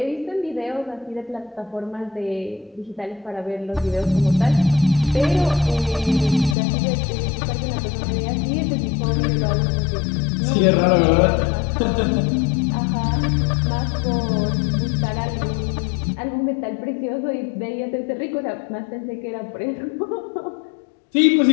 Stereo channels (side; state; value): right; drops out; at 6.6 s